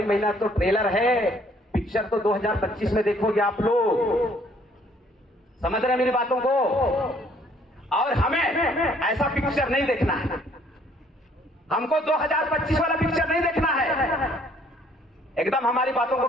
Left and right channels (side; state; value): both; normal; correlation 0.62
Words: महीना तो ट्रेलर है, पिक्चर तो 2025 में देखोगे आप लोग। समझ रहे हैं मेरी बातों को? और हमें ऐसा पिक्चर नहीं देखना है, हमको 2025 वाला पिक्चर नहीं देखना है। एकदम हमारी बातों को